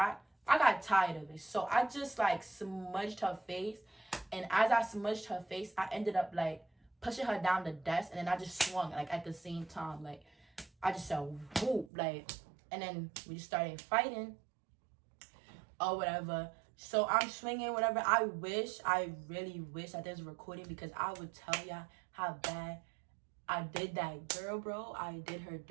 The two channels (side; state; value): left; drops out; at 11.9 s